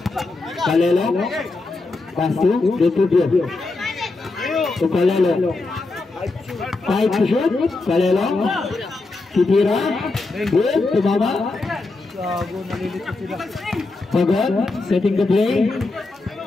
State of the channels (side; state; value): right; quieter; 3.4 dB